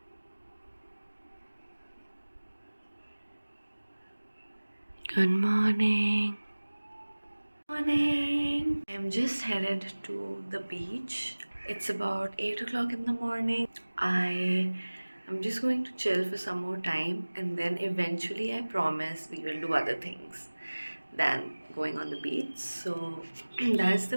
Good morning. Morning. I'm just headed to the beach. It's about 8 o'clock in the morning. I'm just going to chill for some more time, and then eventually I promise we will do other things than going on the beach. So that's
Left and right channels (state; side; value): inverted; both; correlation -1.00